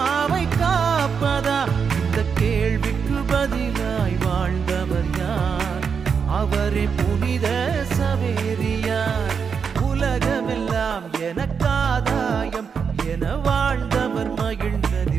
காப்பதா? இந்த கேள்விக்கு பதிலாய் வாழ்ந்தவர் யார்? அவரே புனித சவேரியார். உலகமெல்லாம் எனக்காதாயம் என வாழ்ந்த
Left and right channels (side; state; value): left; quieter; 6.3 dB